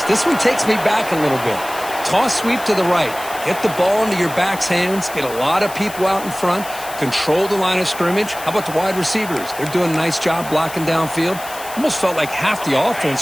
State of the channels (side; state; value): left; noise; hiss, 14 dB below the sound